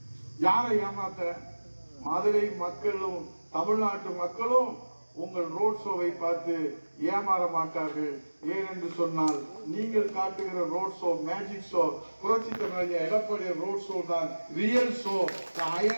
யாரை ஏமாத்த? மதுரை மக்களும் தமிழ்நாட்டு மக்களும் உங்கள் ரோட் ஷோவை பார்த்து ஏமாற மாட்டார்கள். ஏனென்று சொன்னால் நீங்கள் காட்டுகிற ரோட் ஷோ மேஜிக் ஷோ, புரட்சி தமிழ் எடப்பாடி ரோட் ஷோ தான் real show.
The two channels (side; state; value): both; inverted; correlation -1.00